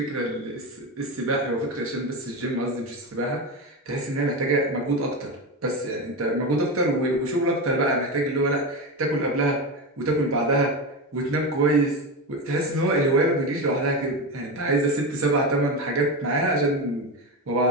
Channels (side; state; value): both; normal; correlation 0.18